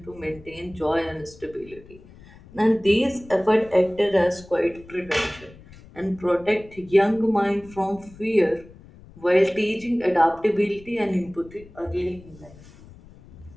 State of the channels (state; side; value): noise; left; rumble, 22 dB below the sound